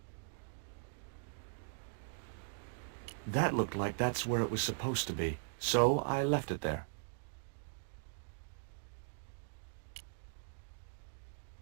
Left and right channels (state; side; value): silent; left; digital silence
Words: That looked like that's where it was supposed to be, so I left it there.